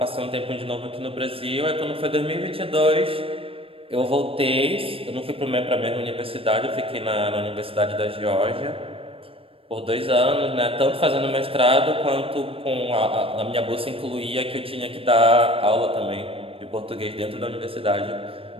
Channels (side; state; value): left; late; 0.27 ms